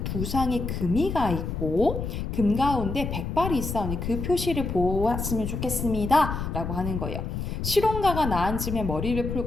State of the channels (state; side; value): noise; left; rumble, 4 dB below the sound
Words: 두 상에 금이가 있고 금 가운데 백발이 있사오니 그 표시를 보았으면 좋겠습니다 라고 하는 거예요. 실혼가가 나앉으며 머리를